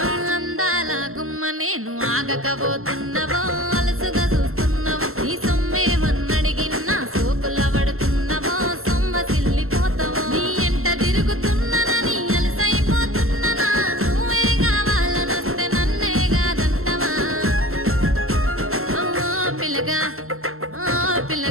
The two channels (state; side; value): late; left; 0.62 ms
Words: అందాల గుమ్మ నేను ఆగకపోతున్నావో అలసుగా చూస్తున్నావో నీ సొమ్మేమన్నడిగిన్నా సోకుల పడుతున్నావో సొమ్మ సిల్లిపోతావో నీ ఎంట తిరుగుతున్నానని అలసైపోతున్నానా నువ్వే కావాలనొస్తే నన్నే కాదంటవా ఓ పిల్లగా ఓ